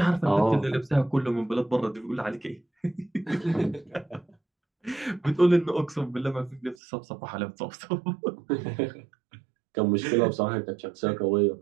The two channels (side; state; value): left; drops out; at 6.8 s